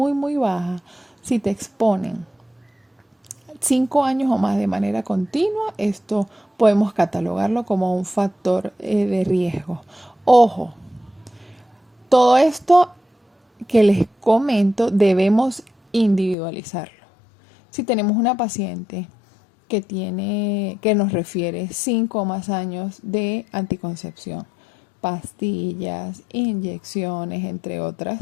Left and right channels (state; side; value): drops out; right; at 16.4 s